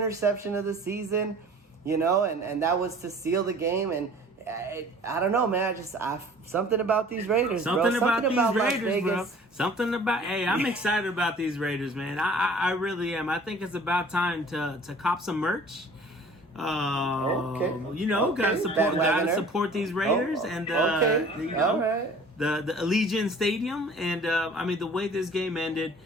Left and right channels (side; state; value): both; normal; correlation 0.48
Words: of the season, and that was to seal the game. And I don't know, man. Something about these Raiders, Something about these Raiders, bro. Hey, I'm excited about these Raiders, man. I really am. I think it's about time to cop some merch. Gotta support these Raiders and the Allegiant Stadium, and the way this game ended,